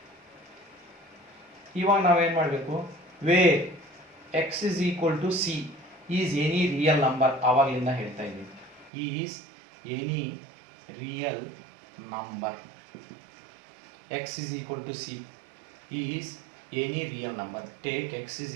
ಇವಾಗ ನಾವೇನ್ ಮಾಡಬೇಕು? where x is equal to c is any real number. ಆವಾಗಲಿಂದ ಹೇಳ್ತಾ ಇದ್ದೀವಿ, is any real number. x is equal to c is any real number. Take x is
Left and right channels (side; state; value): left; drops out; at 8.9 s